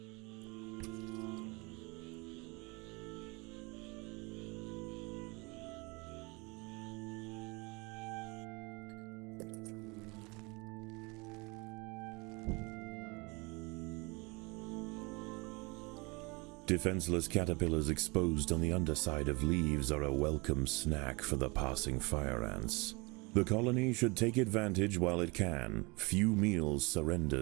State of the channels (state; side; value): quieter; left; 27.3 dB